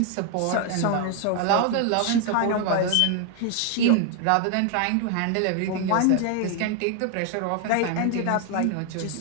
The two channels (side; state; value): both; different; correlation 0.00